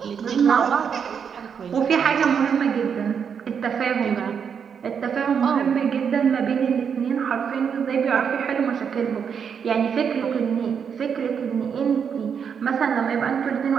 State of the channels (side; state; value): left; quieter; 7.1 dB